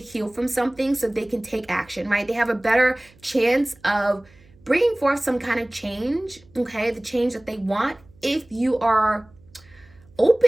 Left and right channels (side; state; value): right; noise; hum, 28 dB below the sound